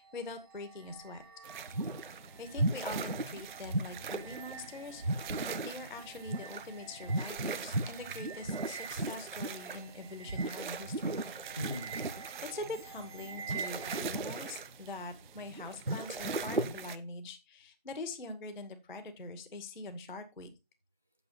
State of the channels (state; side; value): inverted; both; correlation -0.31